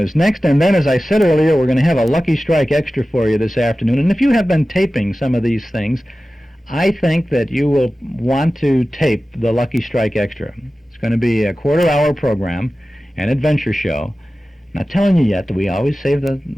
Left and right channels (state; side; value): normal; both; correlation 0.95